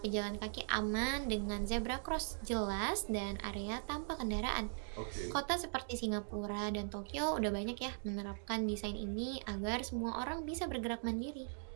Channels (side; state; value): left; silent; digital silence